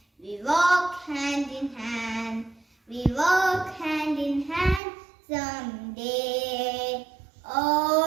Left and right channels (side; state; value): left; drops out; at 4.8 s